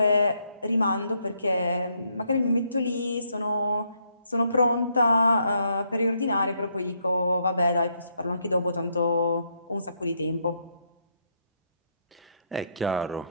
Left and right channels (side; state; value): both; inverted; correlation -0.74